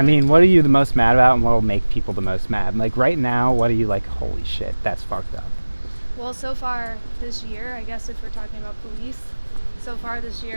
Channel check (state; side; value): inverted; both; correlation -1.00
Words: are you the most mad about, and what will make people the most mad? Like right now, what are you like? Holy shit, that's fucked up. Well, so far this year, I guess if we're talking about police, so far this